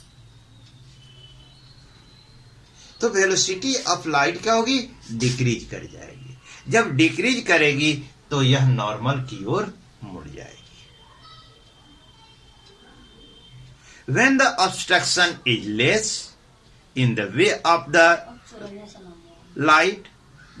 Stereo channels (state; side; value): identical; both; correlation 1.00